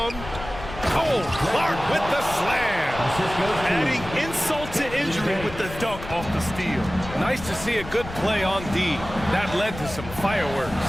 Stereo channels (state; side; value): noise; left; rumble, 12 dB below the sound